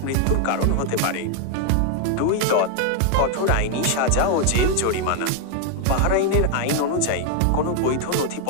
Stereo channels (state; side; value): different; both; correlation 0.00